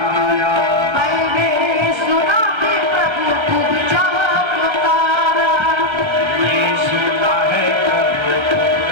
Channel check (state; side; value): late; left; 1.4 ms